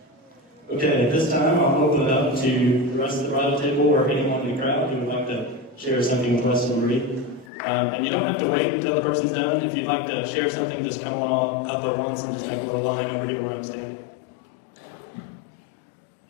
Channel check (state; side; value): drops out; right; at 7.5 s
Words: Okay, at this time, I'll open it up to the rest of the bridal table or anyone in the crowd who would like to share something with Weston and Bree. And you don't have to wait until the person's done. If you'd like to share something, just come on up at once and just make a little line over here where I'm standing.